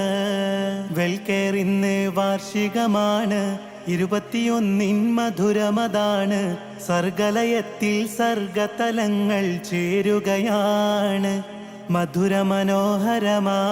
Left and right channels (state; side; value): identical; both; correlation 1.00